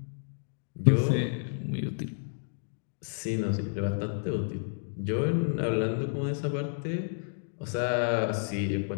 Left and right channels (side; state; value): right; silent; digital silence